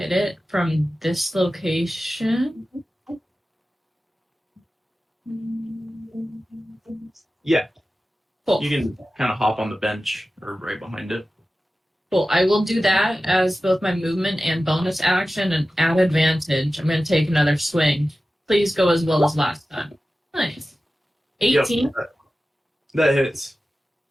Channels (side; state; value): both; normal; correlation 0.95